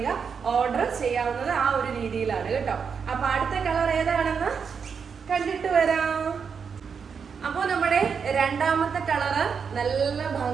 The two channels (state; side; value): quieter; left; 6.3 dB